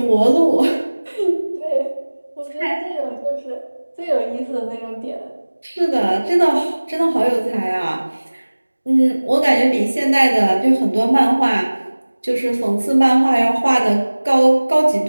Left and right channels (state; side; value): inverted; both; correlation -1.00